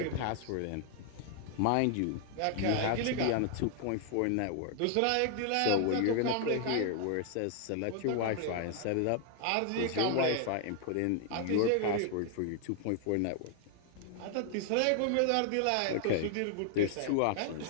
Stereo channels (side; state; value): both; different; correlation 0.00